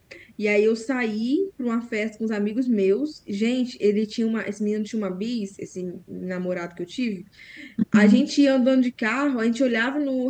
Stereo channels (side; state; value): both; identical; correlation 1.00